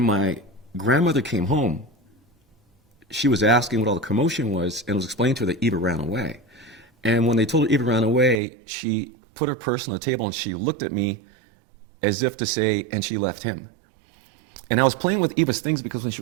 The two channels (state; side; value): drops out; left; at 8.4 s